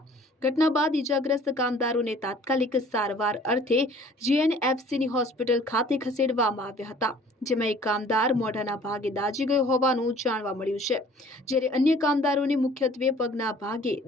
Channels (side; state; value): both; normal; correlation 0.52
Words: ઘટના બાદ ઇજાગ્રસ્ત કામદારોને તાત્કાલિક સારવાર અર્થે જીએનએફસીની હોસ્પિટલ ખાતે ખસેડવામાં આવ્યા હતા, જેમાં એક કામદાર મોઢાના ભાગે દાઝી ગયો હોવાનું જાણવા મળ્યું છે, જ્યારે અન્ય કામદારોને મુખ્યત્વે પગના ભાગે